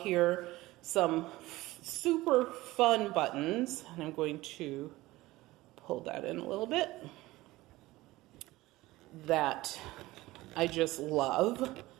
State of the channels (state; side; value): quieter; left; 18.6 dB